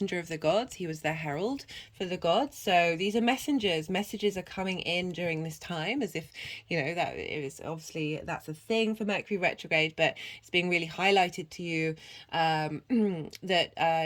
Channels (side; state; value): both; identical; correlation 1.00